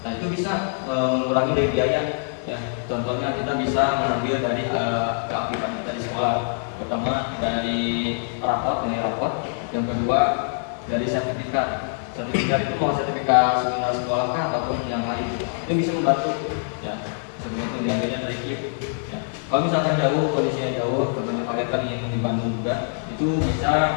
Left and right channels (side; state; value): right; silent; 63 dB below the other